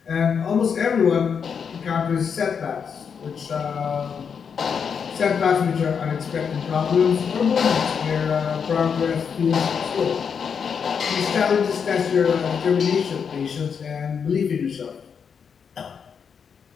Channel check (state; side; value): quieter; right; 6.7 dB